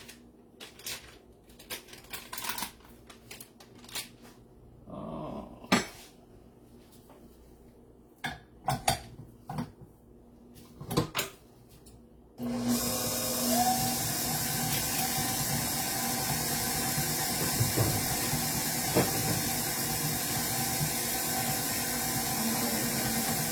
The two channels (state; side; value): identical; both; correlation 1.00